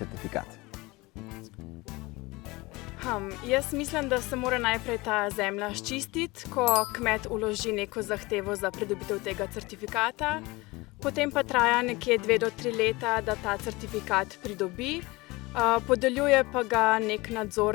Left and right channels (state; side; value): quieter; right; 22.6 dB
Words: Jaz mislim, da se mora najprej ta zemlja sčistiti, ko kmet vloži neko zahtevo za pridobitev tega certifikata. Potem pa traja nekje 2 do 3 leta, da ta certifikat pridobi. Podeljuje pa ga neka